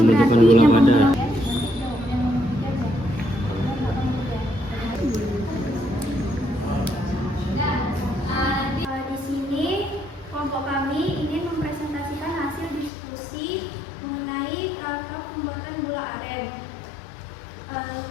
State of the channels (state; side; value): drops out; right; at 12.9 s